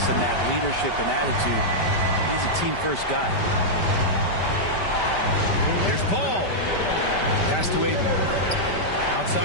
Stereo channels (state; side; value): late; right; 5.1 ms